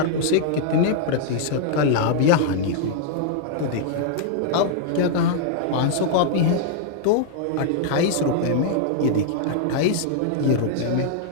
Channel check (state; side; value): different; both; correlation -0.01